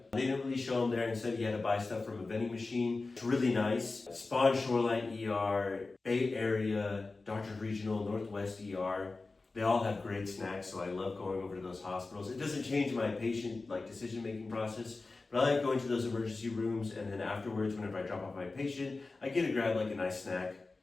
They didn't really show them there. Instead, you had to buy stuff from a vending machine. It's really nice. Spawn Shoreline ER, Bay Area, Doctors Regional, Northwest ER. They all have great snacks, so I love going over to those hospitals. It doesn't change my patient decision-making process, but I like going to those emergency rooms, and then afterwards, whenever I drop off my patient, I get to grab a nice snack,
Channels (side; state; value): right; quieter; 3.6 dB